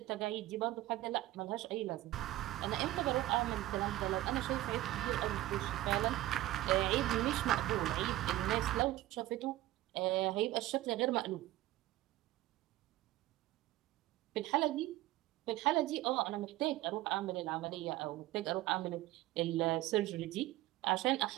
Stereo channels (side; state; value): left; quieter; 16.1 dB